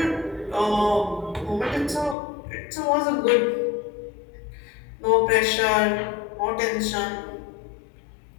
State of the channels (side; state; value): right; drops out; at 2.1 s